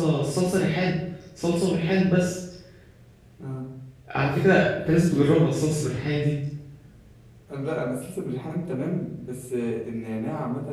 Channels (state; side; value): identical; both; correlation 1.00